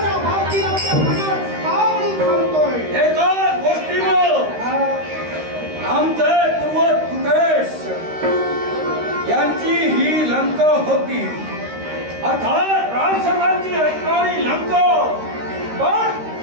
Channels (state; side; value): late; left; 13 ms